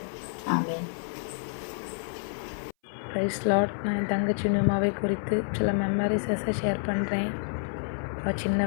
ஆமென். Praise lord. நான் என் தங்கச்சி நியூமாவை குறித்து சில மெமரிஸை ஷேர் பண்ணுறேன். சின்ன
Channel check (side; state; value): right; silent; 59 dB below the other